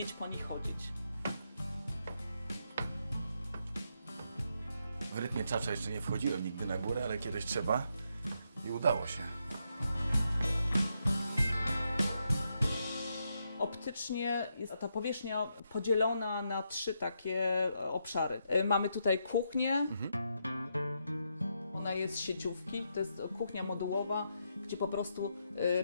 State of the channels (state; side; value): inverted; both; correlation -0.80